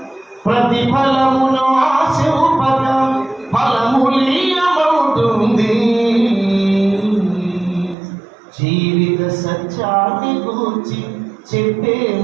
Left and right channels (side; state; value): left; drops out; at 8.0 s